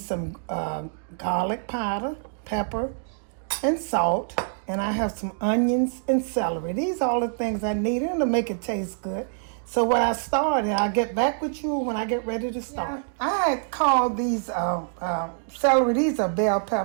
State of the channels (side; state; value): left; silent; digital silence